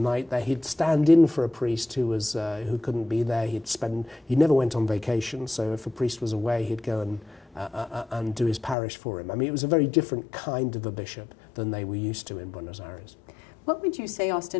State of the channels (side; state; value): right; drops out; at 8.8 s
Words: there. He'd stand in for a priest who couldn't be there. He never went on vacation, so if a priest was away, he'd go and and do his parish for him. I mean, it was a very different kind of a bishop than they were used to in Buenos Aires. What would you say,